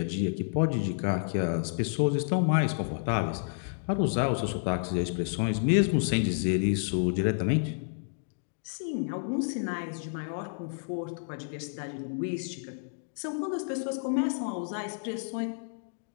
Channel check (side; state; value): right; silent; digital silence